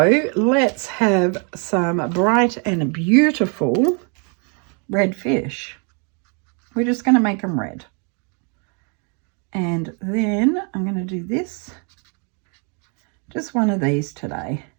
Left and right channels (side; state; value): left; quieter; 37.1 dB